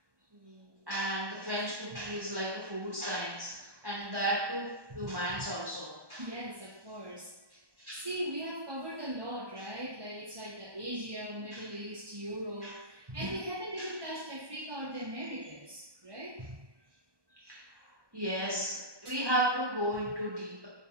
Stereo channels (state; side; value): late; left; 1.2 ms